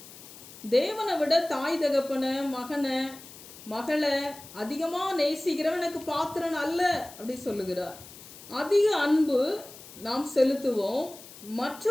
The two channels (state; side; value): noise; left; hiss, 17 dB below the sound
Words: தேவனை விட தாய் தகப்பன, மகனை மகளை அதிகமா நேசிக்கிறவன் எனக்கு பாத்திரன் அல்ல அப்படி சொல்லுகிறார். அதிக அன்பு நாம் செலுத்துவோம்,